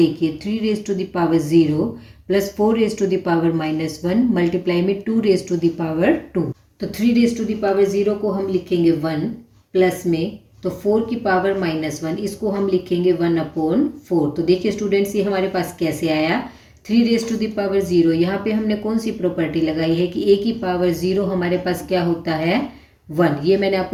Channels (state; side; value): identical; both; correlation 1.00